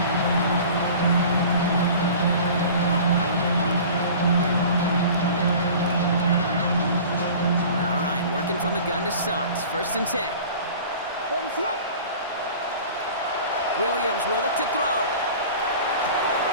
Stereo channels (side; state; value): both; inverted; correlation -0.42